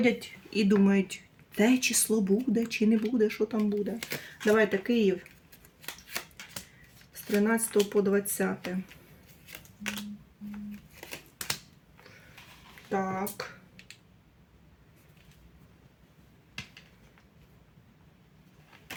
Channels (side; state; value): both; identical; correlation 1.00